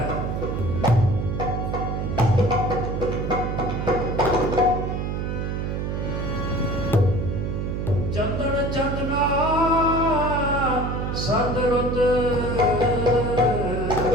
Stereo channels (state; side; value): noise; right; hum, 2 dB below the sound